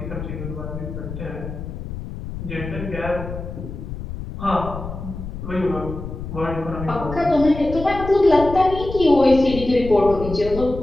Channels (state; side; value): noise; left; rumble, 9 dB below the sound